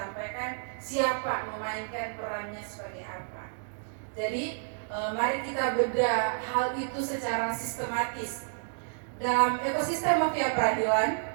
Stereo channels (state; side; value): silent; left; digital silence